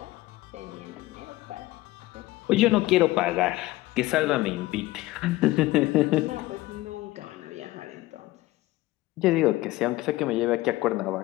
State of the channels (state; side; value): quieter; right; 18.3 dB